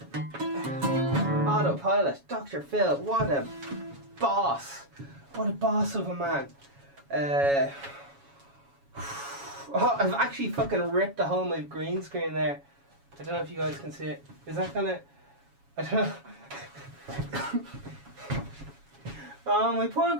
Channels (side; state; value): left; late; 7.2 ms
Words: Autopilot. Dr. Phil. What a boss. What a boss of a man. Oh, I've actually fucking ripped a hole in my green screen there. I don't know if you guys can see it. Is that gonna... I don't know. Oh, my poor